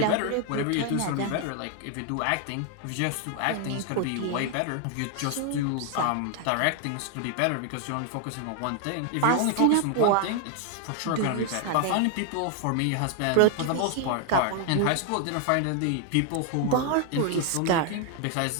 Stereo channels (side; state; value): both; different; correlation 0.00